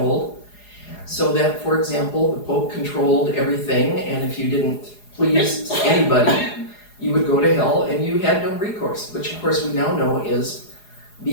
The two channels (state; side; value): late; right; 4.8 ms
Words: So that, for example, the Pope controlled everything, and if you didn't please anybody, you would go to hell, and you had no recourse, which of course we now know is